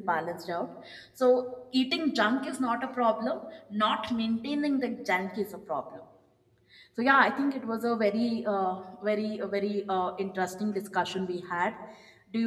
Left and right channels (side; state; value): both; identical; correlation 1.00